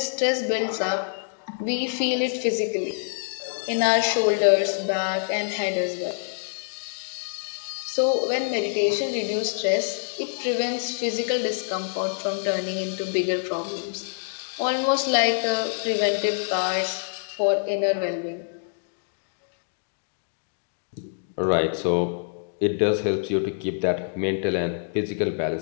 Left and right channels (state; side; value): silent; right; digital silence